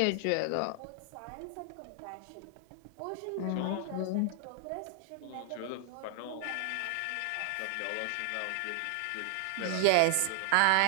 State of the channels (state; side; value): different; both; correlation 0.00